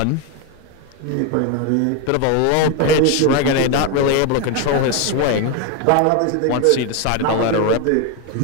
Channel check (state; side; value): different; both; correlation 0.02